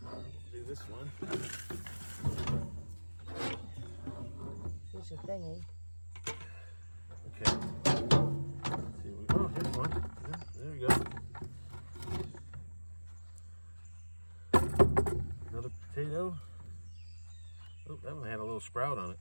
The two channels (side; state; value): both; inverted; correlation -1.00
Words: do this one. Here's your thingy. Okay. Let's see, oh, here's one. Yeah, there we go. Another potato. Oh, that one had a little sprout on it.